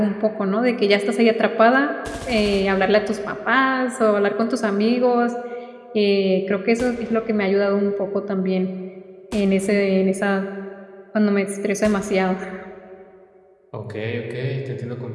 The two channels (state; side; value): identical; both; correlation 1.00